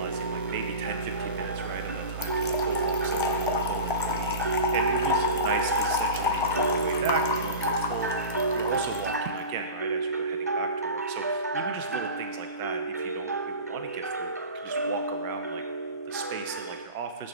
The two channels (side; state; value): both; inverted; correlation -0.32